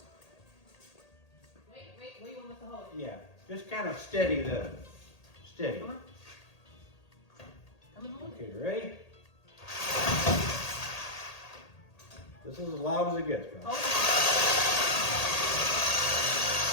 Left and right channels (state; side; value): late; right; 1.8 ms